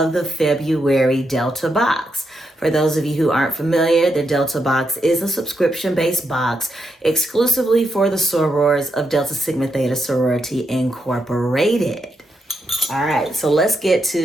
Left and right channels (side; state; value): both; normal; correlation 0.82